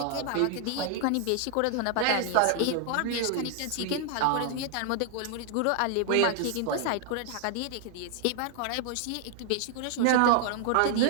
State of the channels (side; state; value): both; different; correlation 0.00